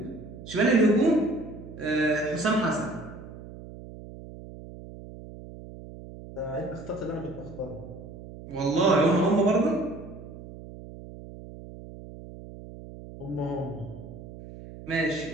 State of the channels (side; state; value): right; noise; hum, 14 dB below the sound